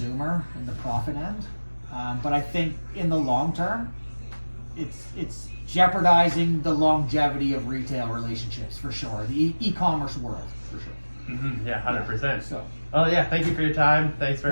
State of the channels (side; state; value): both; inverted; correlation -1.00